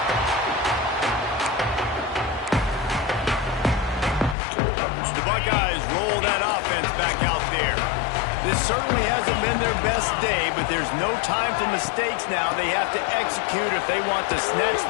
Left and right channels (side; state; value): right; drops out; at 4.4 s